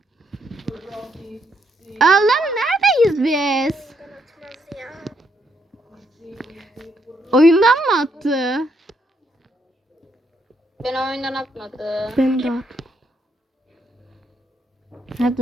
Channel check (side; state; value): both; normal; correlation 0.75